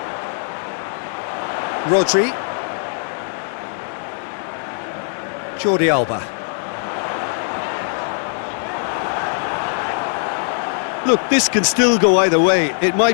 Rodri. Jordi Alba. Look, this can still go either way. It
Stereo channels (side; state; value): right; silent; 65 dB below the other